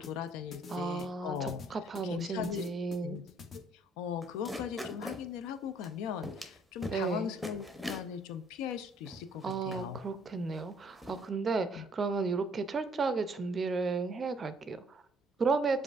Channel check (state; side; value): normal; both; correlation 0.62